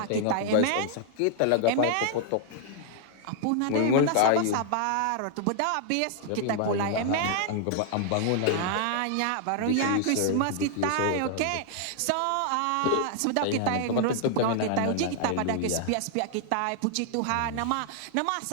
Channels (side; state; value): both; different; correlation 0.00